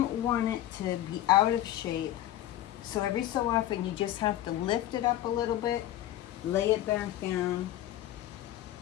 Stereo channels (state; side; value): quieter; right; 13.5 dB